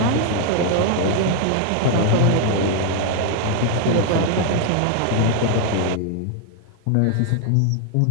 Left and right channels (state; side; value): different; both; correlation 0.00